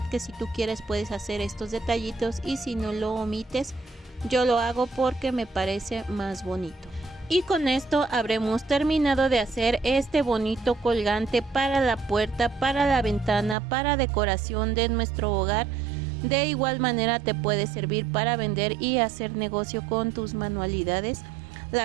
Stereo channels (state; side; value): drops out; left; at 13.6 s